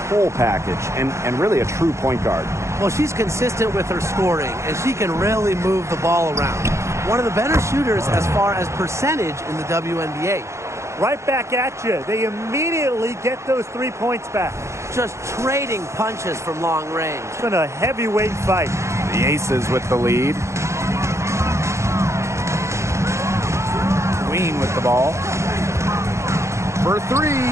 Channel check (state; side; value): late; left; 0.14 ms